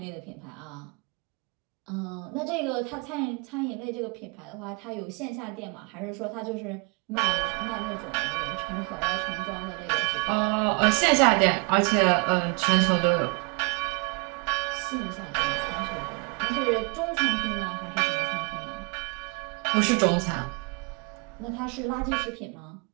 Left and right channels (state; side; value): quieter; left; 33.5 dB